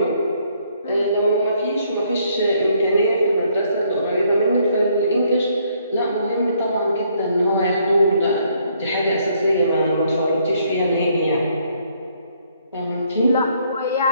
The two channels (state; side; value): inverted; both; correlation -0.68